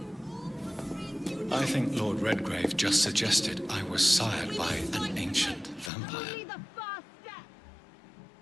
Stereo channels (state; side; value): drops out; right; at 5.9 s